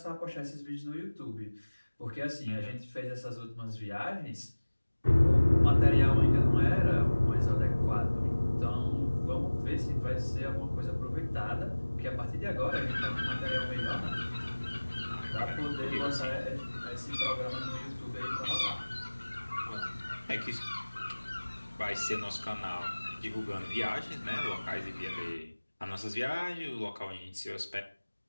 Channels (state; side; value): inverted; both; correlation -1.00